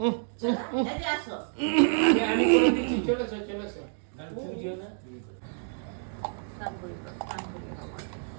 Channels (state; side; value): silent; left; 59 dB below the other